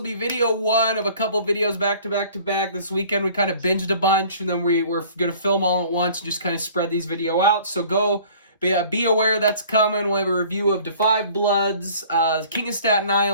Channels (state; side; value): inverted; both; correlation -0.50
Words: be video one of a couple videos back to back to back. This weekend we kind of binged a bunch, and then we're going to film all at once and just kind of spread these video out. So be aware that's coming. We'll have a review of Da 5 Bloods, King of Staten